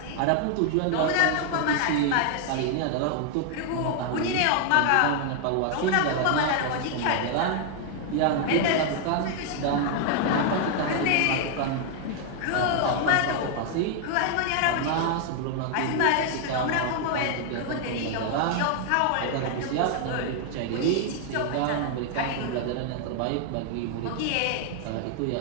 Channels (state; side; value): different; both; correlation 0.00